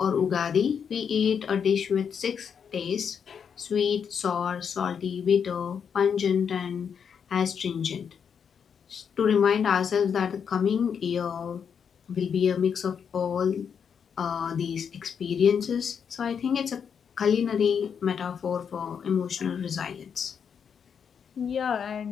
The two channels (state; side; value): quieter; right; 7.1 dB